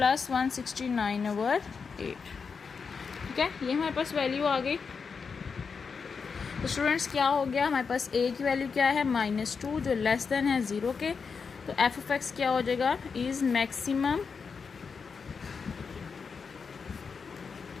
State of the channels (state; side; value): quieter; right; 5.5 dB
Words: 169/8, ठीक है। ये हमारे पास वैल्यू आ गई। तो स्टूडेंट्स क्या हो गया हमारे पास, a की वैल्यू क्या है -2 जो लेस देन है 0 के, तो एफ ऑफ एक्स क्या हो जाएगा, इज मैक्सिमम